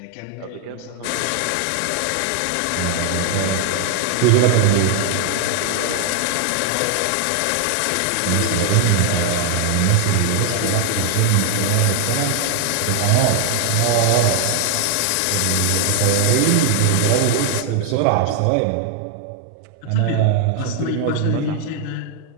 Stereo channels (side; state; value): both; different; correlation 0.00